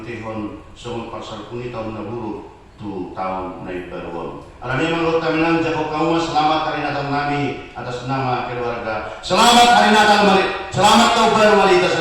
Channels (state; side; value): identical; both; correlation 1.00